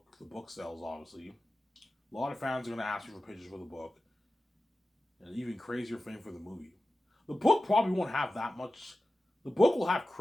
The book sells, obviously. A lot of fans are going to ask me for pictures for the book. And even crazier fame for the movie. The book probably won't have that much. The book will have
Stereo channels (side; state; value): both; normal; correlation 0.94